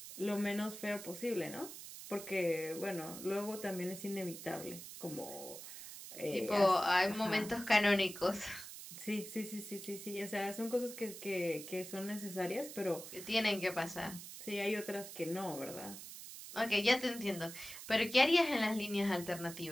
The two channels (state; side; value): noise; right; hiss, 12 dB below the sound